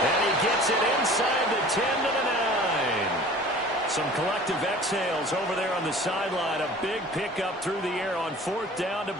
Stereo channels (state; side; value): normal; both; correlation 0.45